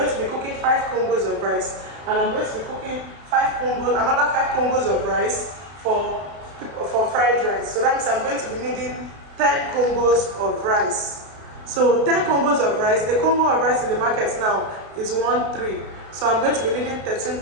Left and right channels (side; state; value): left; late; 32 ms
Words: to be cooking 5 Congos of rice. and I'm going to be cooking 5 congos, another 5 congos of rice for fried rice. So that means I'm going to be needing 10 congos of rice. So 10 congos of rice, a congo of rice in the market now is 1.3. So I'm going to be needing